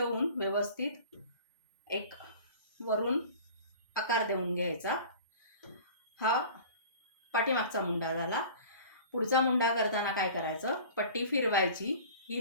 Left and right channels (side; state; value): both; inverted; correlation -0.42